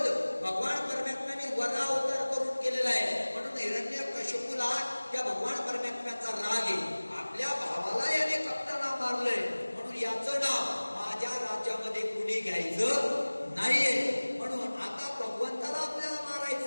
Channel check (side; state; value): both; inverted; correlation -1.00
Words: भगवान परमात्म्याने वराह अवतार करून केलेला आहे. म्हणून हिरण्यकशिपूला त्या भगवान परमात्म्याचा राग आहे. आपल्या भावाला याने कप्ताना मारलंय म्हणून याचं नाव माझ्या राज्यामध्ये कुणी घ्यायचं नाहीये. म्हणून आता भगवंताला आपल्याला